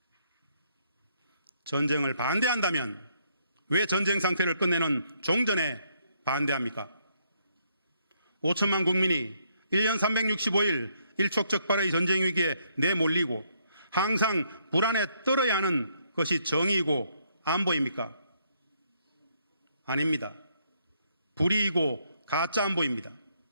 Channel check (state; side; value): inverted; both; correlation -0.72